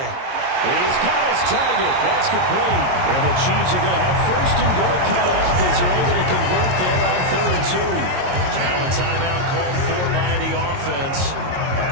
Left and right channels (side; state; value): left; late; 22 ms